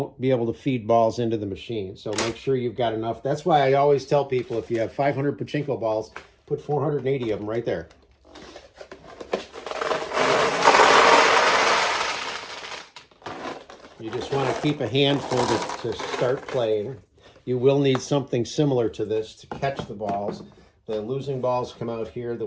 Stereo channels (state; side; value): identical; both; correlation 1.00